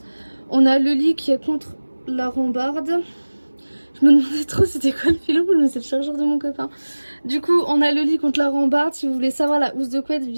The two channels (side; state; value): both; inverted; correlation -1.00